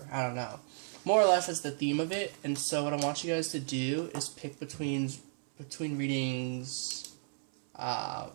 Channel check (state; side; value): silent; left; 55 dB below the other